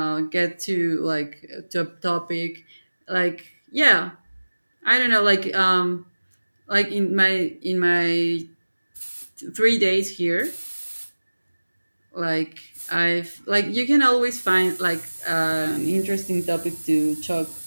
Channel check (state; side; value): inverted; both; correlation -1.00